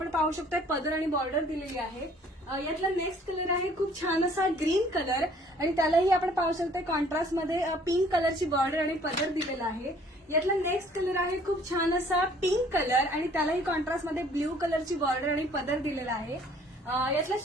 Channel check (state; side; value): normal; both; correlation 0.57